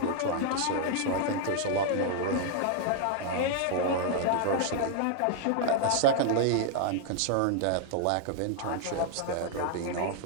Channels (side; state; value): both; different; correlation 0.00